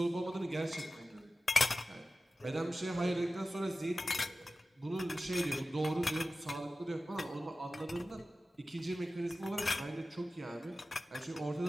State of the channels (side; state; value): both; normal; correlation 0.95